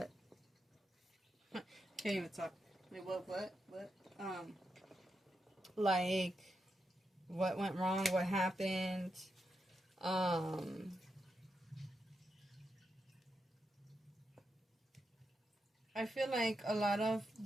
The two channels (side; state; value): both; normal; correlation 0.85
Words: can't even talk. What what went wrong, what happened. I feel like a lot of